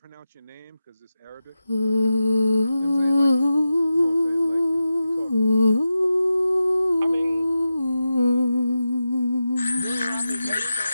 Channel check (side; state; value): both; inverted; correlation -0.92